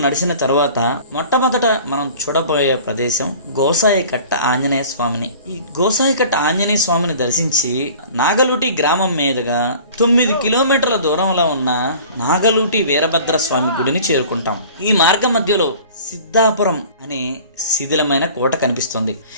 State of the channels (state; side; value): inverted; both; correlation -0.45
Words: నడిచిన తర్వాత మొట్టమొదట మనం చూడబోయే ప్రదేశం గోసాయికట్ట ఆంజనేయ స్వామిని. ఈ గోసాయికట్ట ఆంజనేయ స్వామిని దర్శించి నాగలూటి గ్రామం మీదుగా 9 కిలోమీటర్ల దూరంలో ఉన్న నాగలూటి వీరభద్ర స్వామి గుడిని చేరుకుంటాం. ఈ మార్గ మధ్యలో సిద్ధాపురం అనే శిథిలమైన కోట కనిపిస్తుంది.